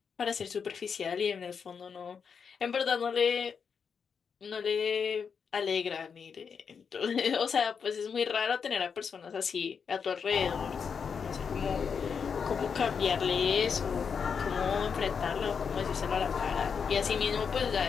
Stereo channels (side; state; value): right; quieter; 6.3 dB